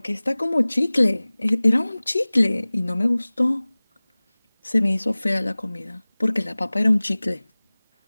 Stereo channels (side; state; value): both; inverted; correlation -0.99